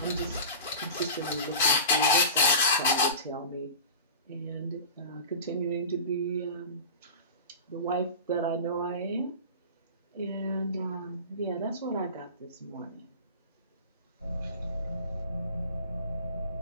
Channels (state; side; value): inverted; both; correlation -0.33